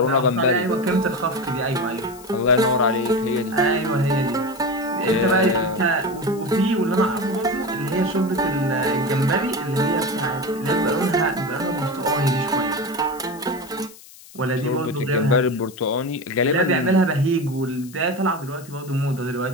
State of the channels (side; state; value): left; noise; hiss, 20 dB below the sound